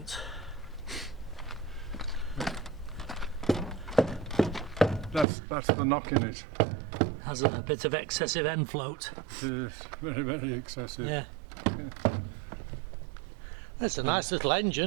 That's the knock in it. Has a bit of excessive end float. It is very, very excessive. Yeah. That's a nice little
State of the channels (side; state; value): left; drops out; at 5.2 s